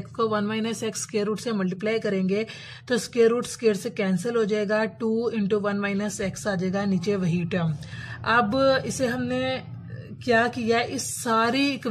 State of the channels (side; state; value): both; identical; correlation 1.00